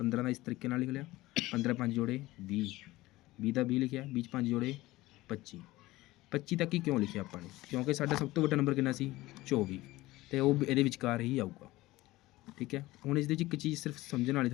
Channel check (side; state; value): right; quieter; 18.5 dB